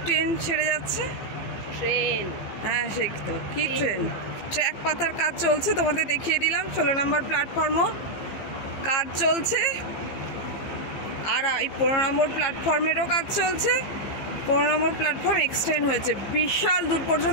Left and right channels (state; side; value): late; right; 15 ms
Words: ট্রেন ছেড়ে যাচ্ছে? ট্রেন, হ্যাঁ সে তো কি ট্রেন। ট্র্যাক পাতার কাজ চলছে, তোমাদের দেখিয়ে দিলাম। 16 নম্বর প্ল্যাটফর্মও কাজ চলছে, আর এই 15 নম্বর প্ল্যাটফর্মেরও কাজ চলছে। 15 নম্বর প্ল্যাটফর্ম এক্সটেন্ড হয়েছে বিশাল দূর